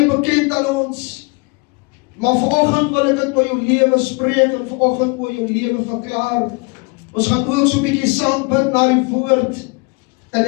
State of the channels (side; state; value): right; quieter; 30.6 dB